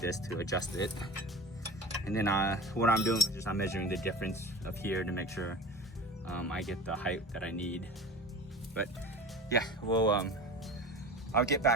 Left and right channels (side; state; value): both; normal; correlation 0.34